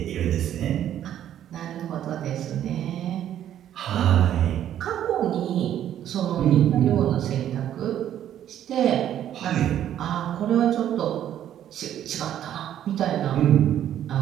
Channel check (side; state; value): left; quieter; 10.9 dB